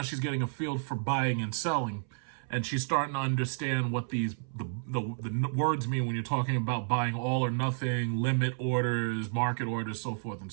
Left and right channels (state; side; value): silent; left; 57 dB below the other